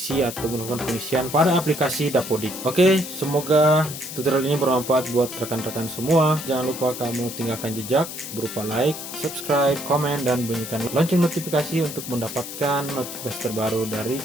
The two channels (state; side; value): noise; left; hiss, 9 dB below the sound